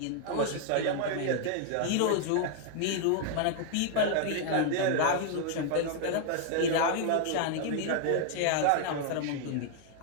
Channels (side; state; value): both; different; correlation 0.00